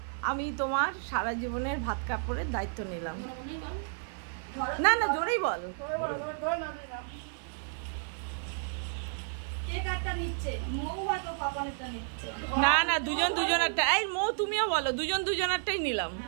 আমি তোমার সারা জীবনের ভাত কাপড়ের দায়িত্ব নিলাম। না না জোরেই বল। না না দুজন দুজনেরটা, এই মৌ তুমিও বলো, দুজন দুজনেরটাই নিলাম।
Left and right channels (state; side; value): silent; left; 57 dB below the other